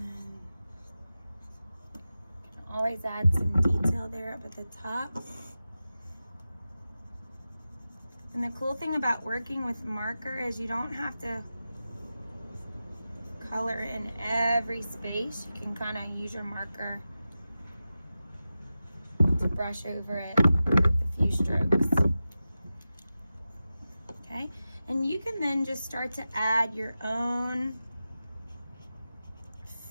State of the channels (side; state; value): both; inverted; correlation -0.93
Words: you can always add some detail there up at the top. And the cool thing about working with marker is you don't have to color in every space. You can kind of use your marker to brush over it with a few strokes. Okay, and you can then just start to add your own